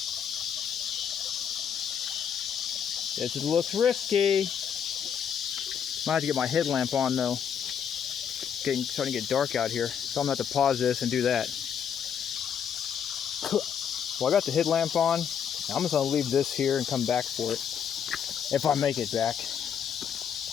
This looks risky. Might have to get my headlamp on though. It's starting to get dark out here, so I'm going to have to pause this and do that. Well, I got the headlamp on. I'm just going to leave this here and come back for it. If I make it back.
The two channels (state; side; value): quieter; right; 8.0 dB